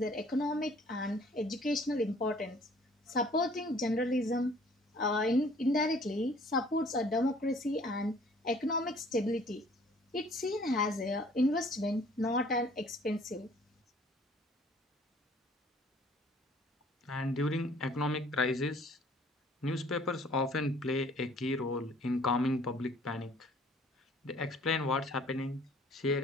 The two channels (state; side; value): normal; both; correlation 0.55